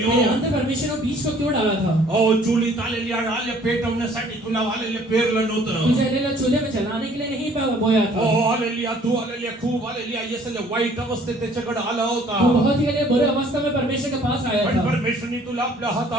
अंदर परमेश्वर ने बीज को क्यों डाला था Oh, चुलीत hallelujah, hallelujah, पेटवण्यासाठी तुला hallelujah पेरलं नव्हतं. तुझे लेना चूल्हे में जलाने के लिए नहीं बोया था Oh, hallelujah, तू hallelujah, खूप hallelujah, yes, hallelujah, वाईट अवस्थेत त्याच्याकडे आला होता. तू बहुत ही बुरे अवस्था में परमेश्वर के पास आया पण था परमेश्वरने तुला आपल्या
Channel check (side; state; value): both; normal; correlation 0.57